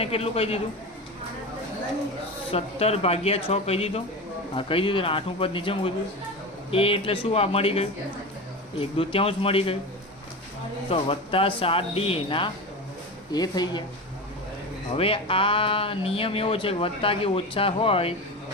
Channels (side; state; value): both; normal; correlation 0.25